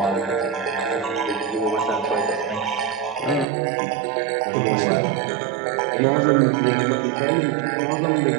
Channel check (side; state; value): left; drops out; at 3.5 s